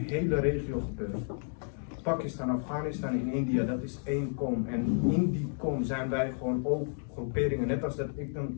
regio gebeurd. Pakistan, Afghanistan en India, dat is één kom. En in die kom zijn wij gewoon ook groeperingen. Net als dat ik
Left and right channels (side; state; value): right; silent; 57 dB below the other